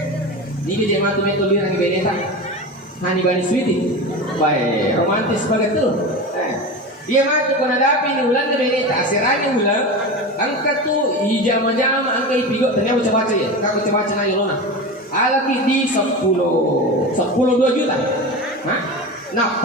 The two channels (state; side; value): normal; both; correlation 0.26